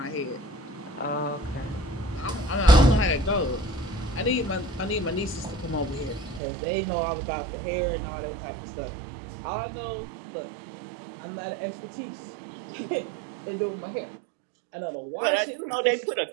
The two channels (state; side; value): drops out; left; at 6.4 s